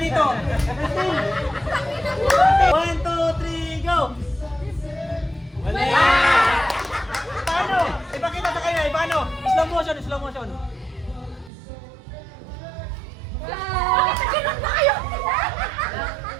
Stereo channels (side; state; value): left; drops out; at 11.5 s